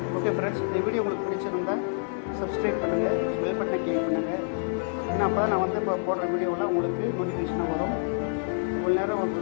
ஓகே ஃப்ரெண்ட்ஸ், இந்த வீடியோ உங்களுக்கு பிடிச்சிருந்தா சப்ஸ்கிரைப் பண்ணுங்கள், பெல் பட்டனை கிளிக் பண்ணுங்கள். ஏன்னா அப்போ தான் நான் வந்து இப்போ போடுற வீடியோவில் உங்களுக்கு நோட்டிஃபிகேஷனாக வரும். இவ்வளோ நேரம்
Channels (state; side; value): silent; right; 55 dB below the other